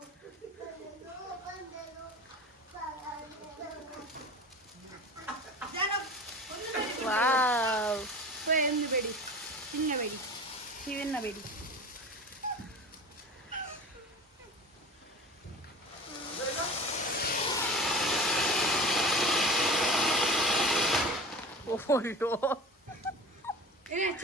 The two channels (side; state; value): both; normal; correlation 0.36